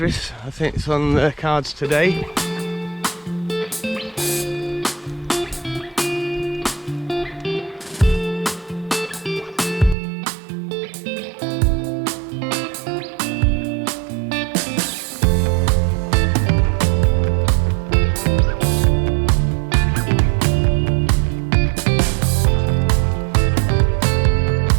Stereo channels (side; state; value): left; drops out; at 10.0 s